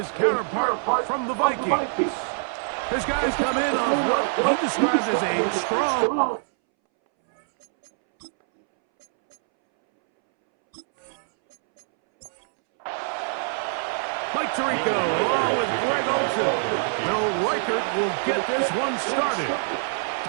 counterpart from the Vikings. His guys come in on what he described as a strong... Mike Tirico along with Greg Olsen. Will Reichert will get this one started.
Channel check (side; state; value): left; silent; 62 dB below the other